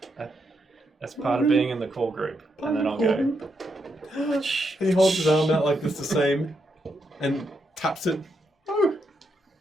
That's part of being in the core group. And then I'll go. And he holds his arm out like this, the same, and taps it. Oh,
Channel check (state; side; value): normal; both; correlation 0.80